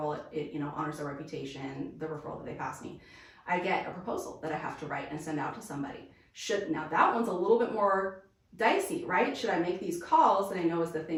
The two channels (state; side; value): identical; both; correlation 1.00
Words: It honors their reputation, the referral that they pass me. I get a proposal that I have to write and send out to somebody. Now that one's a little bit more dicey, right? Should I make these calls that I know is the